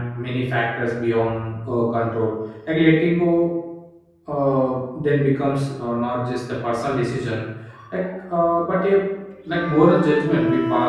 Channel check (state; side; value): identical; both; correlation 1.00